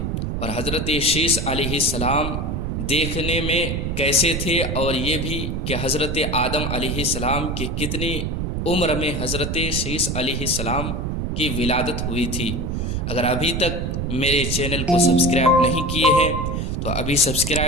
اور حضرت شیث علیہ السلام دیکھنے میں کیسے تھے، اور یہ بھی کہ حضرت آدم علیہ السلام کی کتنی عمر میں حضرت شیث علیہ السلام کی ولادت ہوئی تھی۔ اگر ابھی تک میرے چینل کو سبسکرائب نہیں کیے ہیں تو ابھی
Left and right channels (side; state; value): right; noise; rumble, 2 dB below the sound